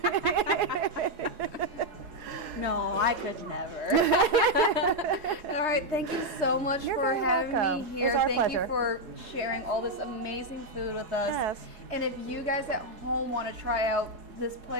No, I could never. All right, thank you so much You're for very having welcome. me here. It was our Thank pleasure. you for sharing all this amazing food with us. Yes. And if you guys at home want to try out this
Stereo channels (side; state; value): left; late; 4.7 ms